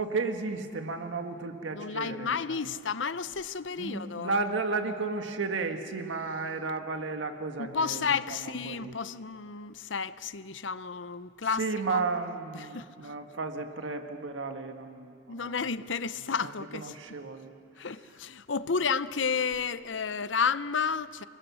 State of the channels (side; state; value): both; normal; correlation -0.10